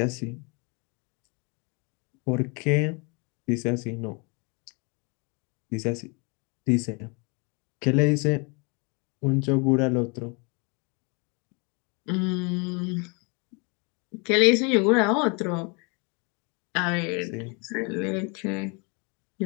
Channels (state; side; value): quieter; right; 32.1 dB